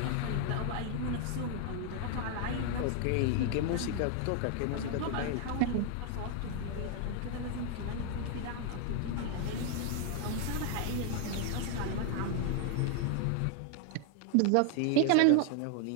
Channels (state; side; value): different; both; correlation 0.00